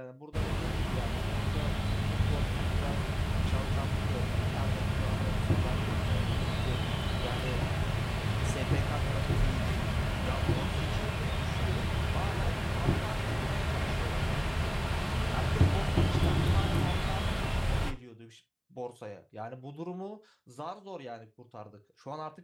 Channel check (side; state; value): both; identical; correlation 1.00